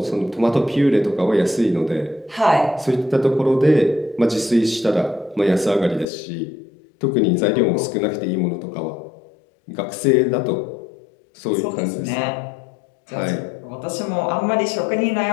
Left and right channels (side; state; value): right; drops out; at 6.1 s